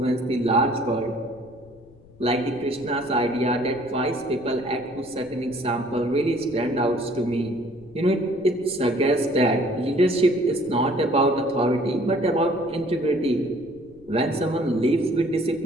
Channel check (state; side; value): noise; left; rumble, 25 dB below the sound